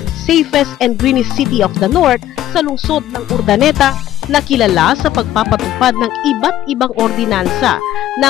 safest and greenest city of the North sa lungsod ng Urdaneta na kilala sa pagpapatupad ng iba't ibang ordinansa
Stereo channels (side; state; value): right; quieter; 12.9 dB